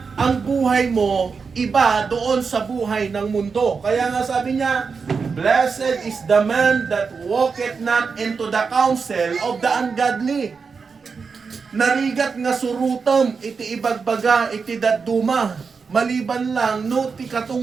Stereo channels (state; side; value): quieter; left; 5.2 dB